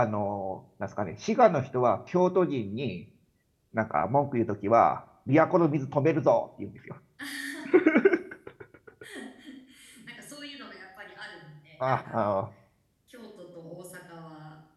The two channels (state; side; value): identical; both; correlation 1.00